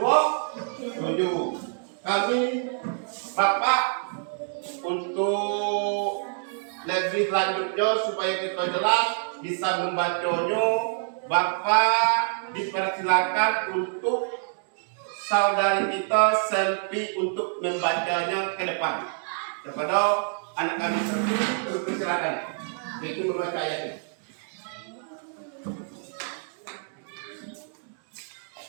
Kami Bapak untuk lebih lanjutnya supaya kita jelas bisa membacanya, Bapak dipersilakan untuk saudari kita Selvi untuk membacanya ke depan kepada anak-anak seperti dipersilakan yaitu membaca ayatnya.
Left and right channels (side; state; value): left; silent; digital silence